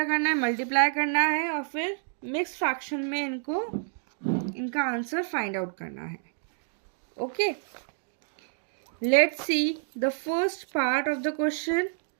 करना है, मल्टीप्लाई करना है और फिर मिक्स्ड फ्रैक्शन में इनका आंसर फाइंड आउट करना है। Okay, let's see the first part of the question.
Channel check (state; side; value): silent; left; digital silence